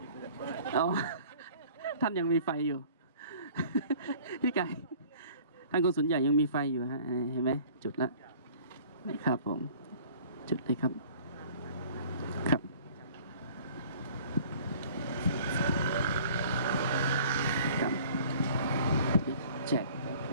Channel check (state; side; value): inverted; both; correlation -0.50